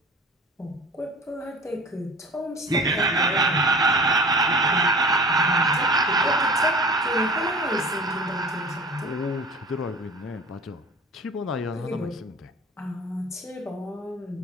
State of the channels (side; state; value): both; normal; correlation 0.41